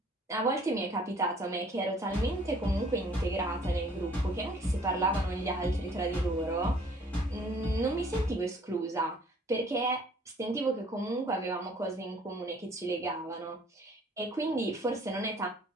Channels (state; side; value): normal; both; correlation 0.57